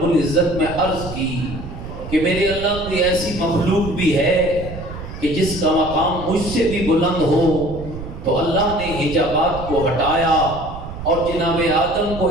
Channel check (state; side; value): noise; right; rumble, 10 dB below the sound